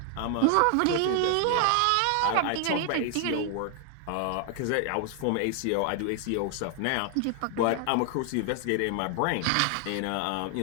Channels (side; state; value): both; different; correlation 0.00